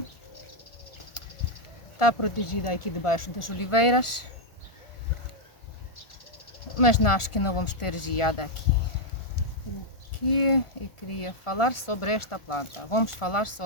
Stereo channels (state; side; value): late; right; 1.4 ms